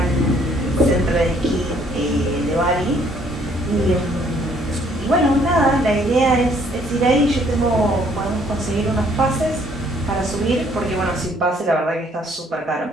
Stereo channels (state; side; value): normal; both; correlation 0.63